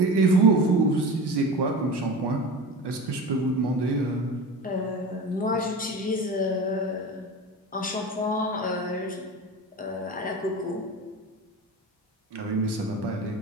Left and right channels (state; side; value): normal; both; correlation 0.31